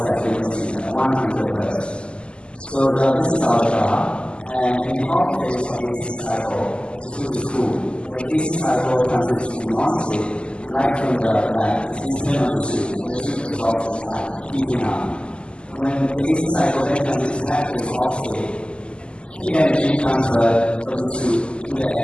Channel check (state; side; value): late; right; 0.051 ms